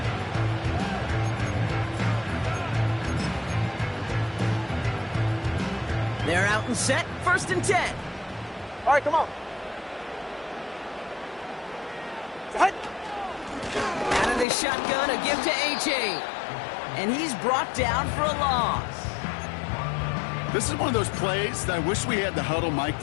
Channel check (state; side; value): drops out; right; at 14.5 s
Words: They're out and set. 1st and 10. All right, come on. Out of the shotgun, a give to Ncaa. And he's brought down for a loss. This is one of those plays that I wish we had the huddle mic'd